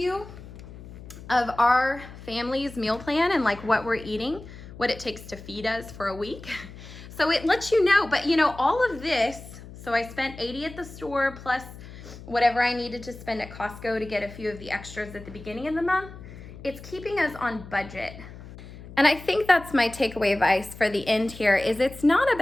of our family's meal plan and like what we're eating, what it takes to feed us for a week. So it lets you know, but you know, all of this, so I spent $80 at the store plus whatever I needed to spend at Costco to get a few of the extras at the beginning of the month. It's keeping us on budget. And I think that's my takeaway advice for the end here is it's not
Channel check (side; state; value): left; noise; hum, 15 dB below the sound